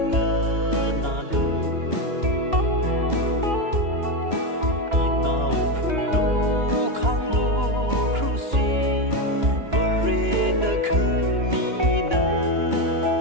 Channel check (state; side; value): late; left; 2.9 ms